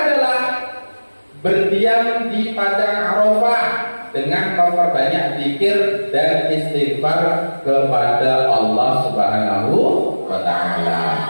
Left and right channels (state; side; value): inverted; both; correlation -1.00